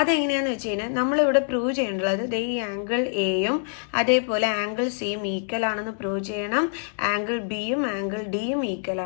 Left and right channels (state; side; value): silent; right; 61 dB below the other